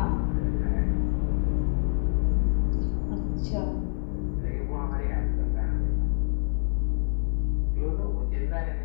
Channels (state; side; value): silent; right; 57 dB below the other